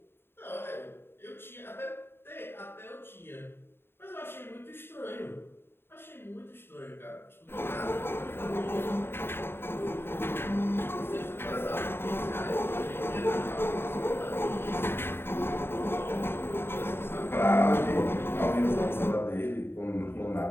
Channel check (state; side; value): late; right; 0.11 ms